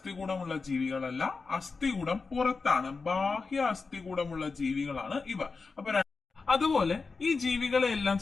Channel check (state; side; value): quieter; right; 4.4 dB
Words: ജീവികളല്ല. അസ്ഥികൂടം പുറത്താണ്. ബാഹ്യ അസ്ഥികൂടമുള്ള ജീവികളാണ് ഇവ. അപ്പൊ അതുപോലെ ഈ ജീവികളെ എല്ലാം